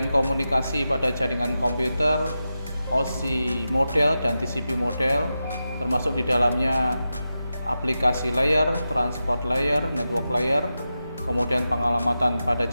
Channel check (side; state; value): both; inverted; correlation -0.91